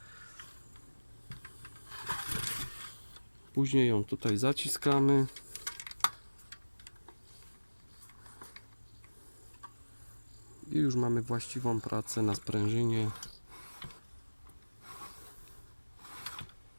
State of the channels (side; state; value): both; inverted; correlation -1.00